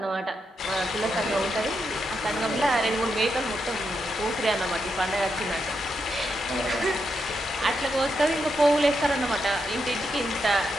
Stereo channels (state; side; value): normal; both; correlation 0.83